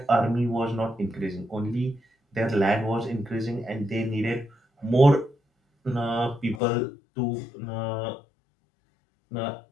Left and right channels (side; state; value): right; drops out; at 6.6 s